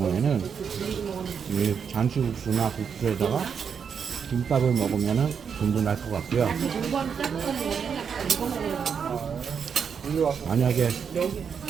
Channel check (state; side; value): quieter; left; 6.8 dB